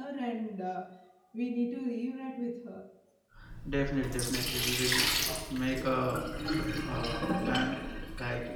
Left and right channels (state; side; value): identical; both; correlation 1.00